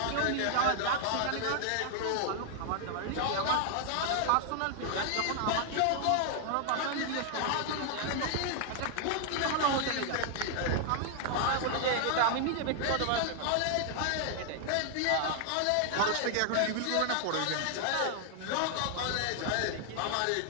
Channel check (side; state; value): both; different; correlation 0.00